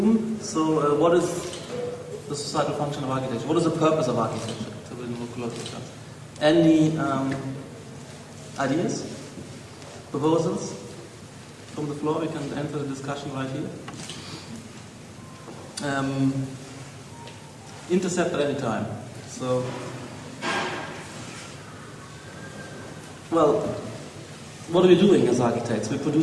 So what is the societal function of architecture? What is the purpose of architecture? Any ideas? Proposals? From the floor, we can enter the discussion right here. Intercept at any time. So, well, what are we doing as architects? We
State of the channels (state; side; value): identical; both; correlation 1.00